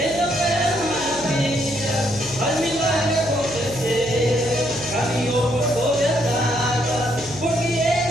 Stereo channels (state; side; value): noise; left; hum, 15 dB below the sound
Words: maravilha, faz milagre acontecer. Caminhou por sobre as águas, porque